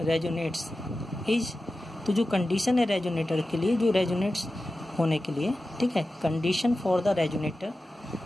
is, तो जो कंडीशन है रेजोनेटर के लिए, जो रेजोनेट्स होने के लिए, ठीक है, condition for the resonator,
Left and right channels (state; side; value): normal; both; correlation 0.94